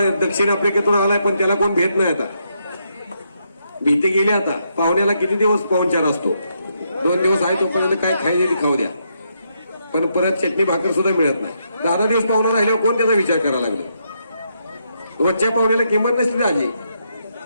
दक्षिण आफ्रिकेतून आलाय, पण त्याला कोण भेट नाही. आता भीती गेली. आता पाहुण्याला किती दिवस पाहुणचार असतो, 2 दिवस आहे तोपर्यंत काय खायचे खाऊ द्या, पण परत चटणी भाकर सुद्धा मिळत नाही. 10 दिवस पाहुणा राहिल्यावर कोण त्याचा विचार करायला लागले. रोजच्या पाहुण्याला किंमत नसते आजी.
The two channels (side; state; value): both; inverted; correlation -0.78